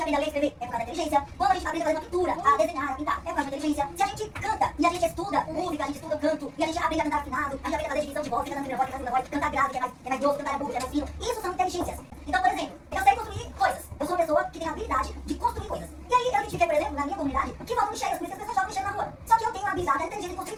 aprende a ler e escrever, é por causa da inteligência. Quando a gente aprende a fazer uma pintura, a desenhar, a pintar, é por causa da inteligência. Se a gente canta e a gente estuda música, a gente estuda canto, e a gente aprende a cantar afinado, a gente aprende a fazer definição de voz, cantando primeira voz, segunda voz, cantar grave, que é mais grosso, cantar agudo, que é mais fino. Isso são inteligências. Então, por exemplo, eu sei construir coisas. Eu sou uma pessoa que tem a habilidade de construir coisas. E aí eu identifiquei, por exemplo, na minha comunidade, que faltam lixeiras, por isso as pessoas jogam lixeira na rua. Só que eu tenho a habilidade, a inteligência de construir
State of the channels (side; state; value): both; identical; correlation 1.00